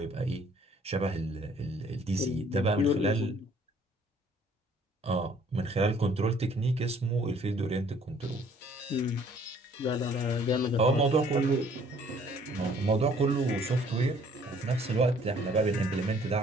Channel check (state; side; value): normal; both; correlation 0.59